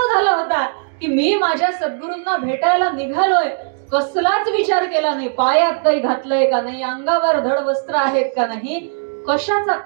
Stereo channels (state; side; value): silent; left; digital silence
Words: झाला होता की मी माझ्या सद्गुरूंना भेटायला निघालोय. कसलाच विचार केला नाही, पायात काही घातलंय का नाही, अंगावर धड वस्त्र आहेत का नाही, कशाचा